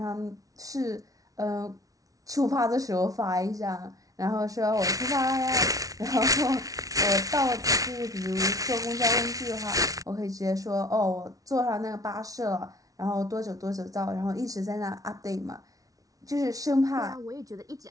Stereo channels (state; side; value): late; left; 0.18 ms